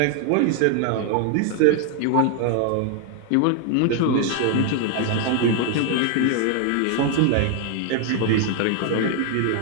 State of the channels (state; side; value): different; both; correlation 0.00